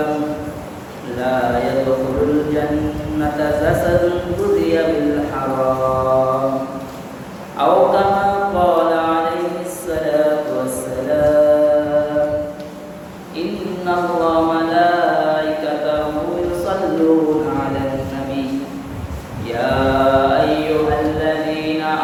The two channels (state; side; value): identical; both; correlation 1.00